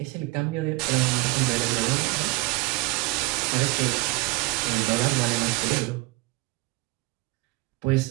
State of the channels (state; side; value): quieter; left; 21.6 dB